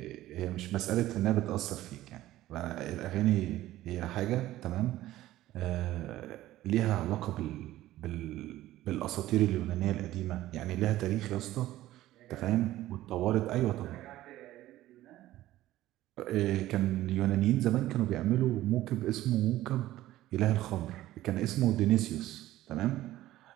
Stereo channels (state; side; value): quieter; left; 15.1 dB